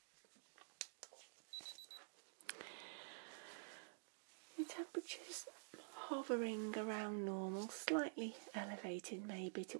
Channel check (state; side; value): silent; left; digital silence